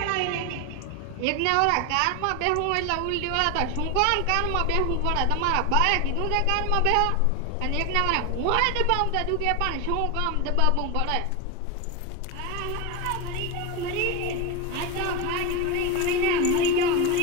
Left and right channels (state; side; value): different; both; correlation 0.02